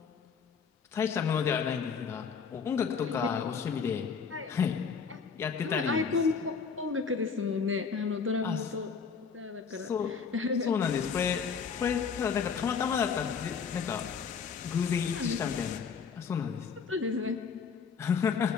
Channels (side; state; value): right; quieter; 6.0 dB